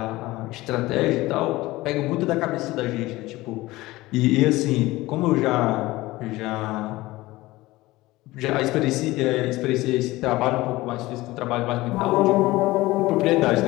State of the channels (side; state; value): right; quieter; 18.9 dB